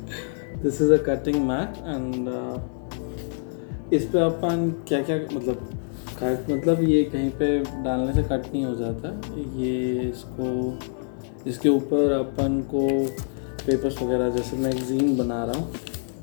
This is a cutting mat and इस पे अपन क्या क्या मतलब cut मतलब ये कहीं पे डालने से कट नहीं हो जाता। ये इसके ऊपर अपन को पेपर्स वगैरह जैसे मैगज़ीन बना रहा हूँ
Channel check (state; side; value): silent; right; digital silence